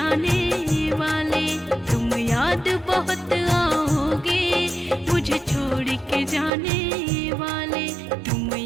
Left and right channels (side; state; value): left; drops out; at 6.5 s